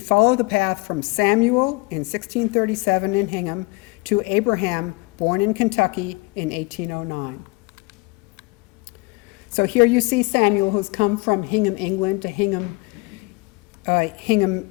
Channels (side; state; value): right; quieter; 24.1 dB